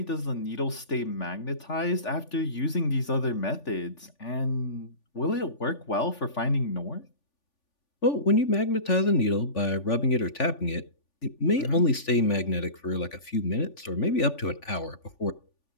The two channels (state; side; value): late; right; 3.5 ms